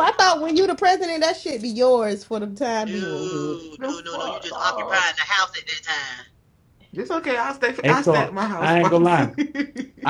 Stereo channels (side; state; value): both; identical; correlation 1.00